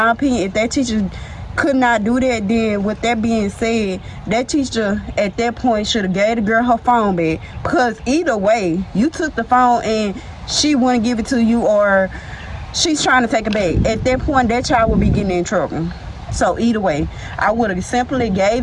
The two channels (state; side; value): identical; both; correlation 1.00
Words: opinion, if that teacher could not do that, then with that being said, that teacher at that point should have gave the girl her phone back. Because either way, you took the phone and she wouldn't give it to you, or she's trying to take it back. At that point, that child would be getting in trouble. So either way, I would have simply gave